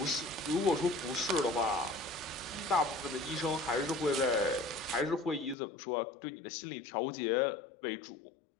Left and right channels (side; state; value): right; drops out; at 5.6 s